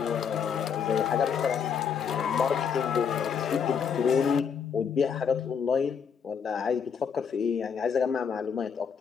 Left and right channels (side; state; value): right; quieter; 6.8 dB